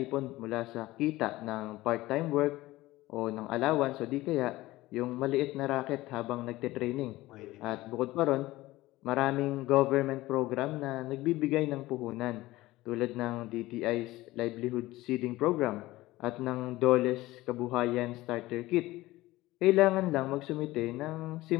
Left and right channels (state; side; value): quieter; right; 18.0 dB